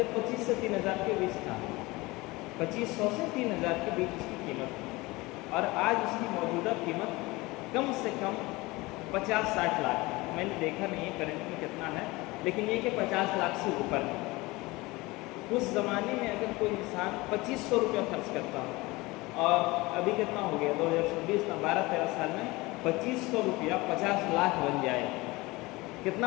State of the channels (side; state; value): right; quieter; 22.0 dB